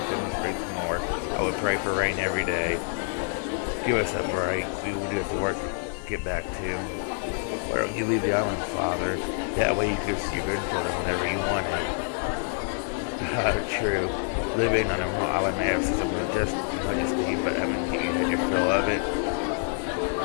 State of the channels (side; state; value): right; silent; 60 dB below the other